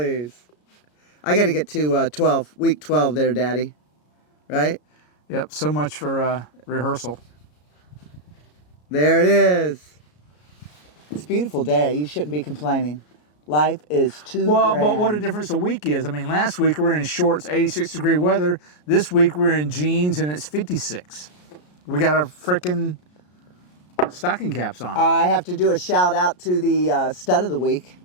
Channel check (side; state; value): right; late; 33 ms